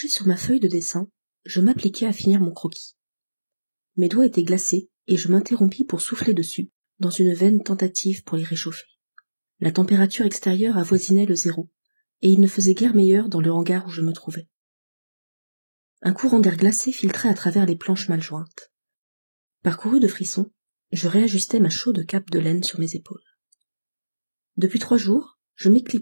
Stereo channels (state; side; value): inverted; both; correlation -1.00